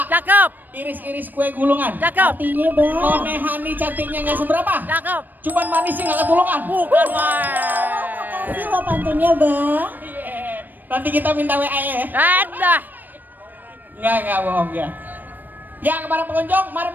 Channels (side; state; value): left; late; 0.089 ms